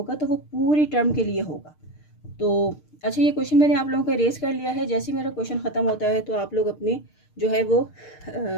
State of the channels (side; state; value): right; late; 6.6 ms